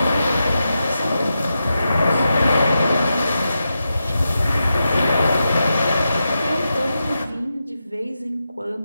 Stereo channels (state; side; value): inverted; both; correlation -0.88